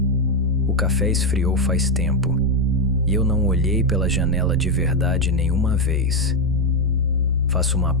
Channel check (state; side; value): normal; both; correlation 0.06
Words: O café esfriou faz tempo e eu não olhei pela janela de verdade nenhuma vez. Faço uma